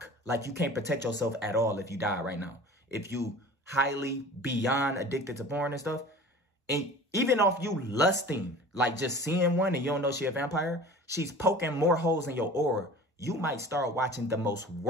Like you can't protect yourself at all if you die right now. If you highly beyond addicted to porn and stuff. And even off you lusting, like just seeing one and you don't know she a vampire, she's poking more holes in your aura. You might start watching the most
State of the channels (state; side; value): normal; both; correlation 0.41